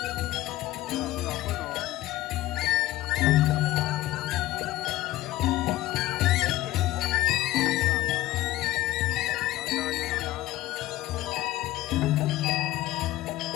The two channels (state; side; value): quieter; right; 16.0 dB